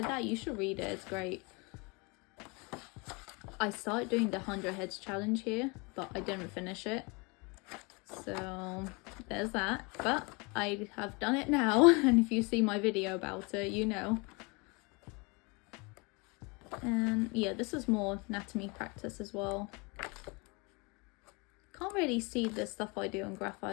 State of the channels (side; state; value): right; quieter; 29.0 dB